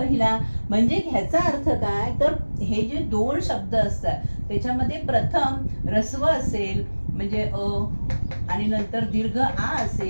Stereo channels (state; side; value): inverted; both; correlation -1.00